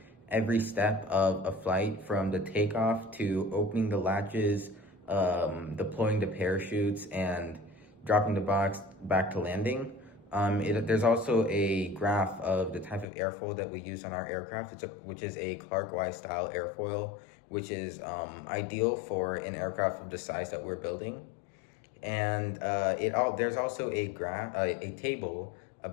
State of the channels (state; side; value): drops out; right; at 13.1 s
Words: every step of a flight from the takeoff to opening the latches, deploying the parachutes, and dropping the box back to landing. There's also a graph of the type of airfoil that we use on our aircraft, which is a Clark Wise style airfoil, which is ideal for an aircraft of the size that we're building. And there's also a table